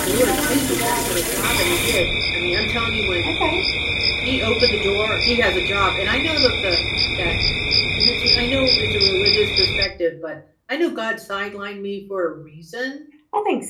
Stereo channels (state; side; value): identical; both; correlation 1.00